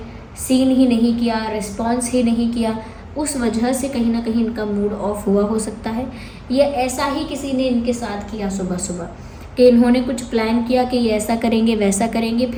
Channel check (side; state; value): both; identical; correlation 1.00